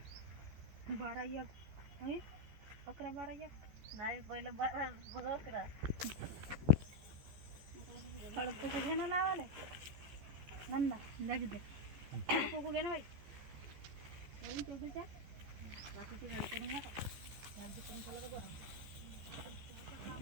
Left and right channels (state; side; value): late; left; 14 ms